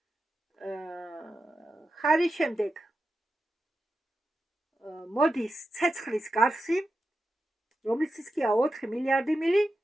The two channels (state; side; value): normal; both; correlation 0.90